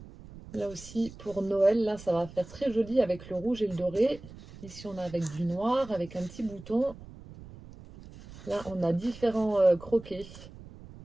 Là aussi, pour Noël, là, ça va faire très joli avec le rouge et le doré. Ici, on a avec du noir, avec un petit bouton. Là, on a différents croquets.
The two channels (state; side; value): noise; right; rumble, 17 dB below the sound